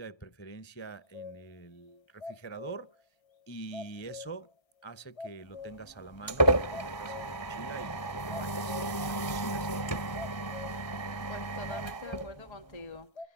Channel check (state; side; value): late; right; 1.3 ms